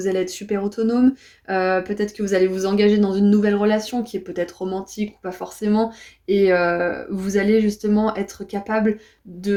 allez être super autonome. Peut-être que vous allez vous engager dans une nouvelle relation qui est peut-être romantique ou pas forcément. Et vous allez justement être capable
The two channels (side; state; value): both; identical; correlation 1.00